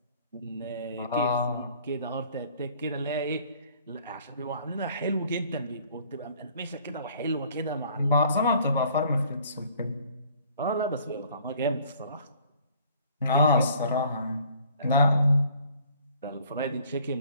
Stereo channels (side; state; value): both; inverted; correlation -0.56